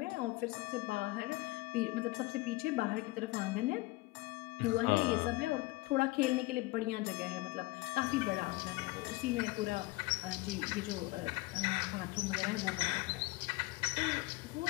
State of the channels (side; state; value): right; quieter; 21.7 dB